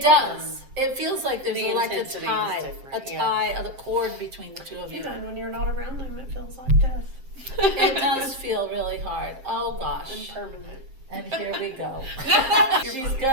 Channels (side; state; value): left; late; 7.5 ms